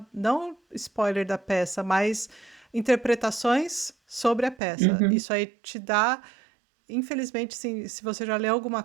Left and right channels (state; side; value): drops out; left; at 4.5 s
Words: spoiler da peça, mas interpretações sobre a peça. uhum, Isso aí te dá, infelizmente, se você já leu alguma